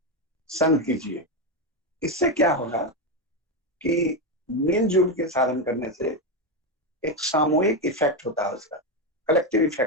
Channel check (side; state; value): both; normal; correlation 0.09